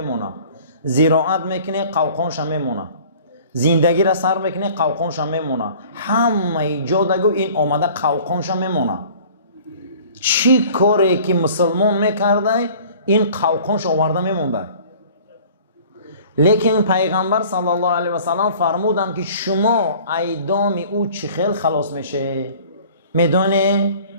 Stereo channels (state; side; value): inverted; both; correlation -0.48